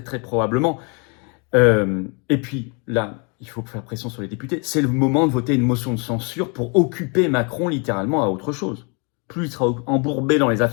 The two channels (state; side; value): quieter; right; 34.1 dB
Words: très probablement. Et puis, là, il faut faire pression sur les députés. C'est le moment de voter une motion de censure pour occuper Macron littéralement à autre chose. Plus il sera embourbé dans les